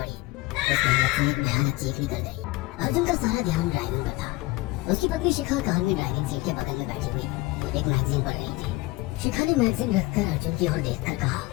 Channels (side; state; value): right; quieter; 20.9 dB